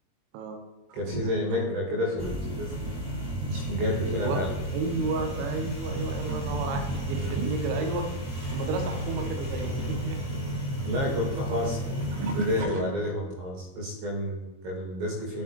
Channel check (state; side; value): late; left; 22 ms